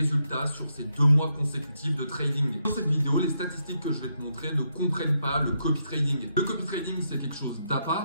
sur ces 2 mois consécutifs de trading. Dans cette vidéo, les statistiques que je vais te montrer ne comprennent pas le copy trading. Le copy trading, c'est quelque chose d'à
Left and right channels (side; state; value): both; inverted; correlation -0.80